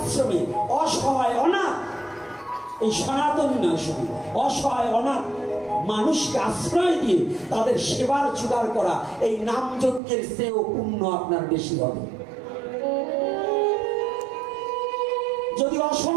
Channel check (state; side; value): drops out; left; at 10.0 s